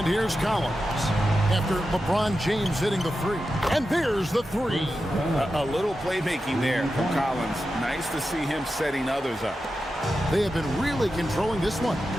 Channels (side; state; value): both; normal; correlation 0.91